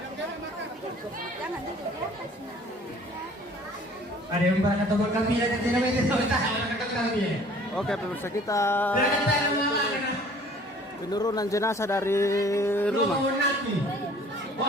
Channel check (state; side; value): normal; both; correlation 0.52